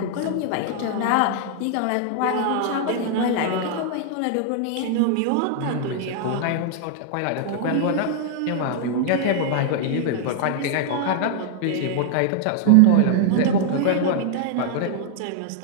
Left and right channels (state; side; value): different; both; correlation -0.01